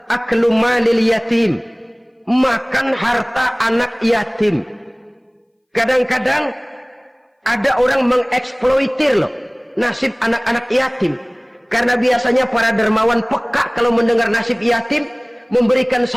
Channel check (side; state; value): both; identical; correlation 1.00